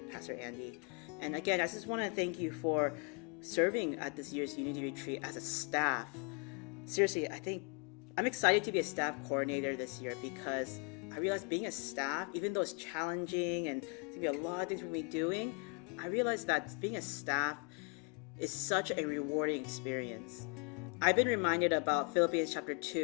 Pastor Andy. And again, I just want to thank you for serving at this year's Unity Retreat as a staff. Seriously, I think I'm excited to be a staff coordinator this year because I realized being a staff, even though it's challenging and there's going to be a lot of things we're going to be doing, I realized that being a staff is such a rewarding experience. I've been reminded about Philippians chapter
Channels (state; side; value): quieter; right; 32.7 dB